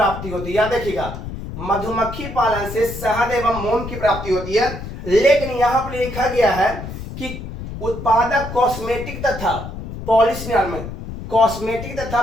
होती है। याद रखिएगा, मधुमक्खी पालन से शहद एवं मोम की प्राप्ति होती है। लेकिन यहां पर लिखा गया है कि उत्पादक कॉस्मेटिक तथा पॉलिश निर्माण में, कॉस्मेटिक तथा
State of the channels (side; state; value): left; noise; rumble, 9 dB below the sound